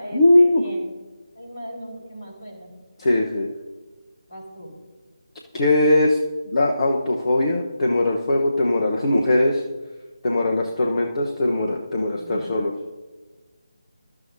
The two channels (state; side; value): inverted; both; correlation -0.88